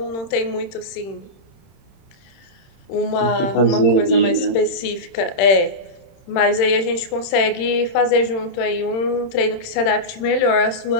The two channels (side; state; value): right; late; 31 ms